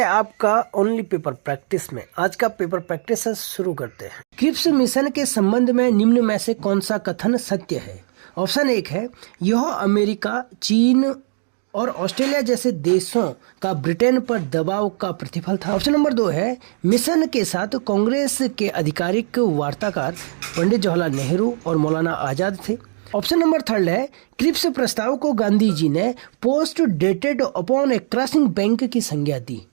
आपका ओनली पेपर प्रैक्टिस में। आज का पेपर प्रैक्टिस शुरू करते हैं। क्रिप्स मिशन के संबंध में निम्न में से कौन सा कथन सत्य है? ऑप्शन 1 है यह अमेरिका, चीन और ऑस्ट्रेलिया जैसे देशों का ब्रिटेन पर दबाव का प्रतिफल था। ऑप्शन नंबर 2 है मिशन के साथ कांग्रेस के आधिकारिक वार्ताकार पंडित जवाहरलाल नेहरू और मौलाना आजाद थे। ऑप्शन नंबर 3 है क्रिप्स प्रस्ताव को गांधी जी ने पोस्ट डेटेड अपॉन ए क्रशिंग बैंक की संज्ञा दी।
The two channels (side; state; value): left; silent; digital silence